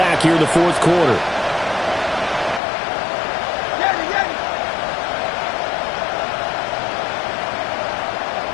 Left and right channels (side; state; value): right; drops out; at 2.6 s